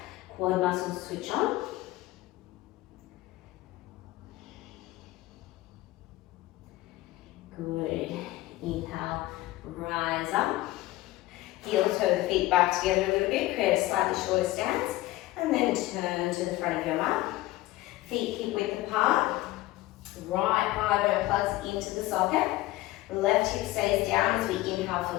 quad muscles switch on. Good. Inhale, rise up. Heel toe the feet back together a little bit. Create a slightly shorter stance And then turn to the front of your mat. Feet hip width apart. Right thigh bone plugs into the socket. Left hip stays down as we inhale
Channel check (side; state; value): right; quieter; 17.6 dB